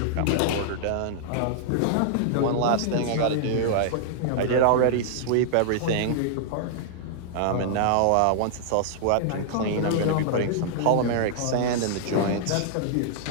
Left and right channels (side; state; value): both; different; correlation -0.01